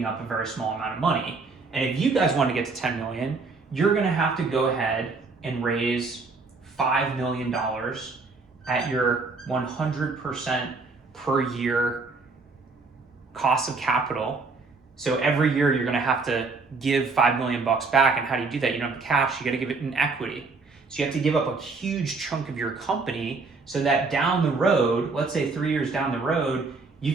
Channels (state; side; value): quieter; left; 4.1 dB